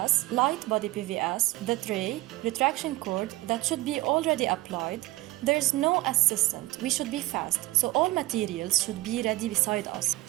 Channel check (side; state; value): left; quieter; 19.3 dB